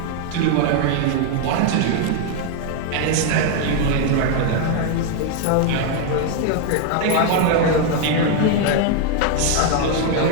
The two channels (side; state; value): both; different; correlation 0.01